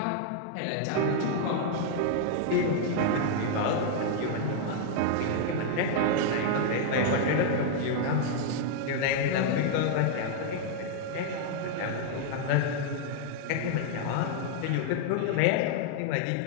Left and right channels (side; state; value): both; different; correlation 0.00